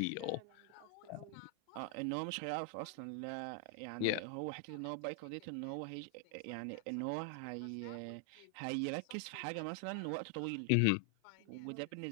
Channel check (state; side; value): different; both; correlation 0.00